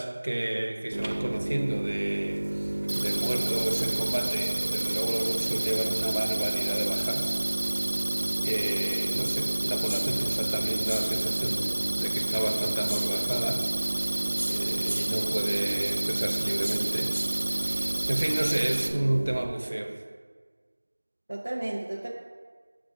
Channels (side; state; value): both; inverted; correlation -1.00